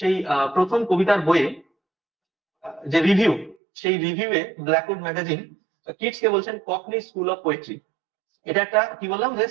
প্রথম কবিতার বইয়ে যে রিভিউ, সেই রিভিউয়ে ব্ল্যাকউড ম্যাগাজিন কিটসকে বলছেন ককনি স্কুল অফ পোয়েট্রি। এটা একটা কি বললাম যে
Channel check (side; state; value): left; drops out; at 3.6 s